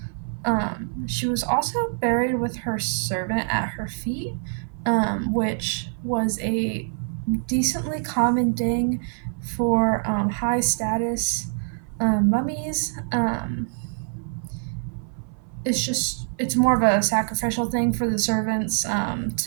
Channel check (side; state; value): left; silent; 55 dB below the other